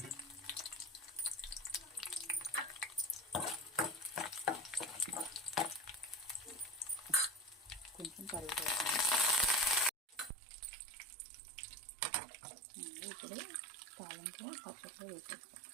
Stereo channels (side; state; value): left; drops out; at 10.3 s